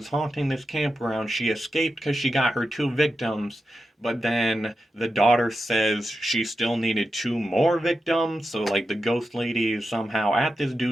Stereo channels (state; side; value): normal; both; correlation 0.89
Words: haunting this campground, she escaped because she got her two victims. But then the daughter says she still needed two more victims. So, like, the ghost lady is somehow at this